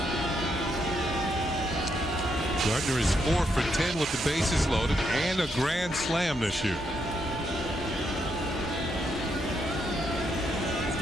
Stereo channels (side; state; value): both; normal; correlation 0.78